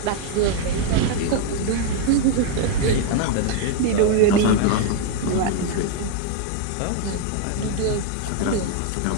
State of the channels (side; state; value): both; different; correlation 0.00